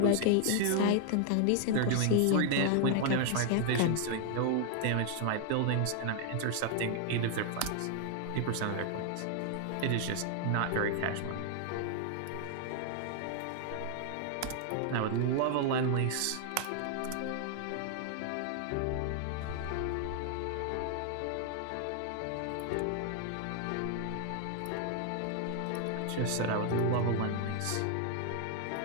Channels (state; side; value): different; both; correlation 0.00